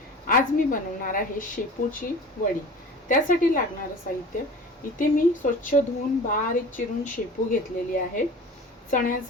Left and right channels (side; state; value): both; normal; correlation 0.39